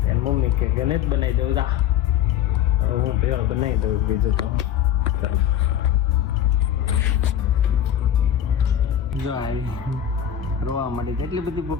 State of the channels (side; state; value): right; quieter; 10.0 dB